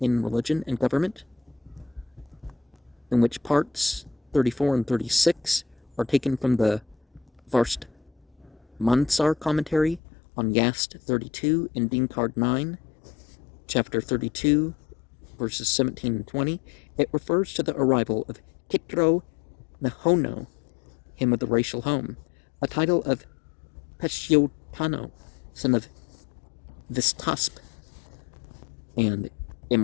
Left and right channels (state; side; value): drops out; right; at 10.0 s